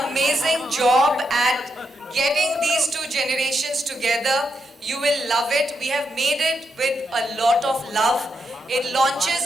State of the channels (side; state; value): both; normal; correlation 0.82